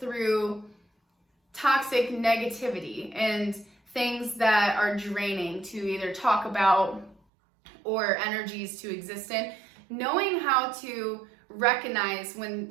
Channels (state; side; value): drops out; left; at 7.2 s